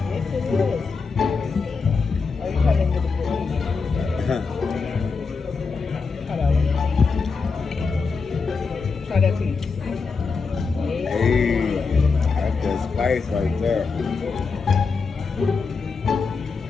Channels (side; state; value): right; quieter; 4.8 dB